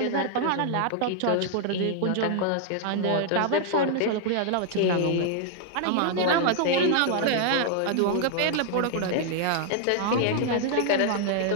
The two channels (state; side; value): different; both; correlation 0.00